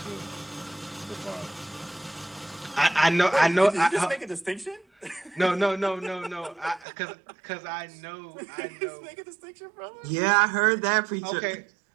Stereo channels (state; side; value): drops out; left; at 6.9 s